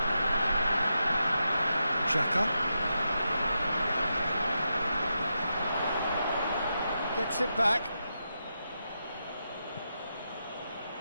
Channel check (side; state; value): both; inverted; correlation -0.86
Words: Xhaka gets it back.